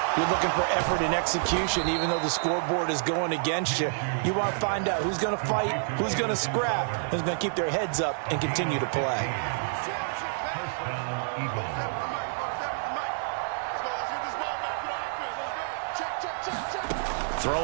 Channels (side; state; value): left; silent; digital silence